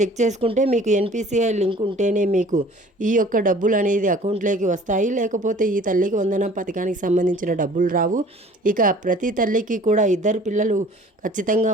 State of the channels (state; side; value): normal; both; correlation 0.50